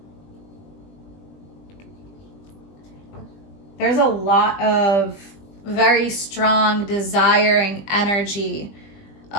There's a lot of very strong, desiring energy,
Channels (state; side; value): late; right; 20 ms